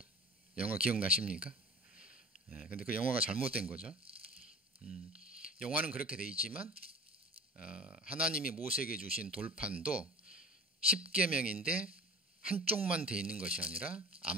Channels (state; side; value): normal; both; correlation 0.41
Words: 영화 기억나십니까? 근데 그 영화가 잘못된 거죠. 영화는 그렇게 돼 있지만 하나님이 모세에게 주신 돌판도 10계명인데 한쪽만 돼 있는 것이 아니라